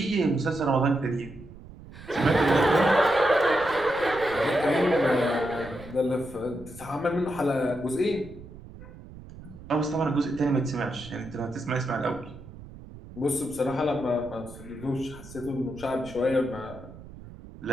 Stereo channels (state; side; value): noise; right; rumble, 16 dB below the sound